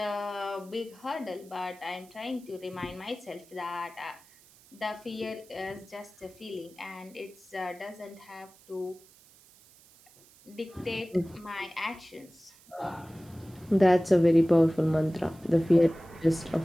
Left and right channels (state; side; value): noise; right; hiss, 26 dB below the sound